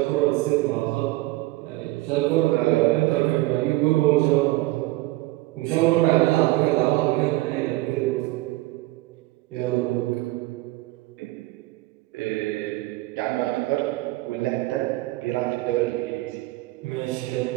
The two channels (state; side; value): quieter; left; 19.5 dB